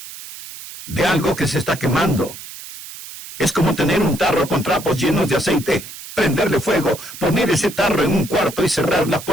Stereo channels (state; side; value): noise; right; hiss, 14 dB below the sound